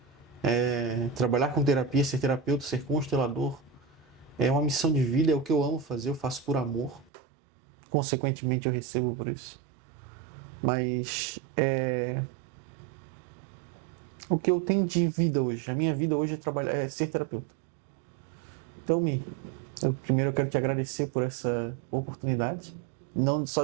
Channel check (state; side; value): drops out; left; at 7.1 s